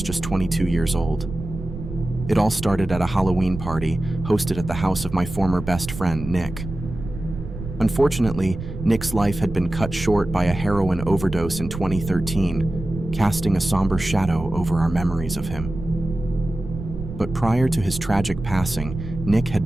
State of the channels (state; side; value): noise; right; rumble, 9 dB below the sound